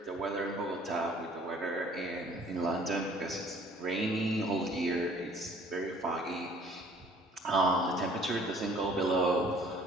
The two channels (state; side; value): normal; both; correlation 0.54